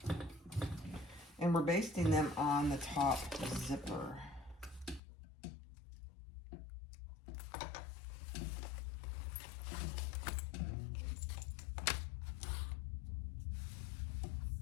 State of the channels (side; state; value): right; drops out; at 5.0 s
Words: And we're basting them on the top zipper.